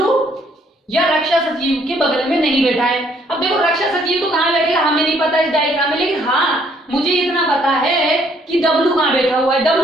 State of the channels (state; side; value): normal; both; correlation 0.66